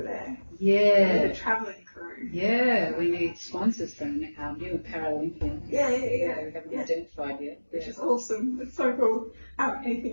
there. Yeah. The travelling crew. Yeah, we need sponsors from new Paralympians. Yeah. We haven't identified yet. Which is awesome. It's so cool.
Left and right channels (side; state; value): both; inverted; correlation -1.00